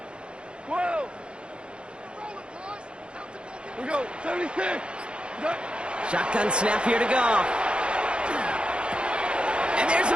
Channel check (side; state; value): left; late; 0.055 ms